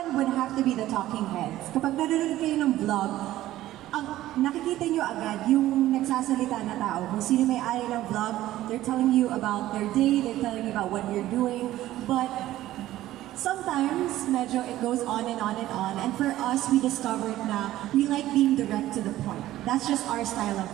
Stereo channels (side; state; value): left; quieter; 14.7 dB